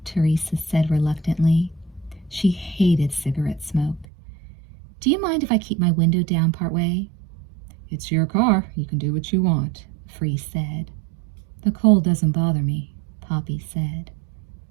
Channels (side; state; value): left; drops out; at 4.0 s